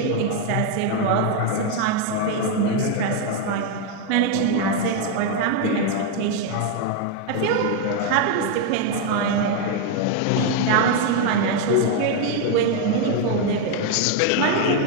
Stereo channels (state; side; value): different; both; correlation 0.01